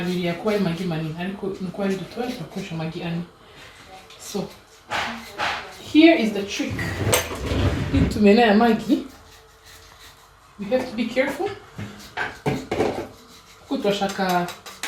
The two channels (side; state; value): both; identical; correlation 1.00